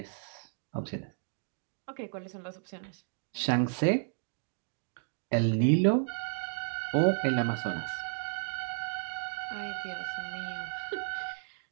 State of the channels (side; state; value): left; silent; digital silence